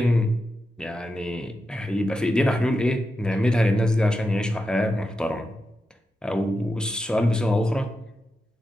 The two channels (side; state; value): both; normal; correlation 0.89